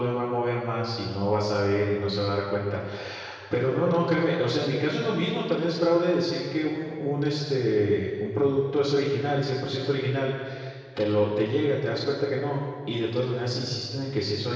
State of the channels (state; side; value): identical; both; correlation 1.00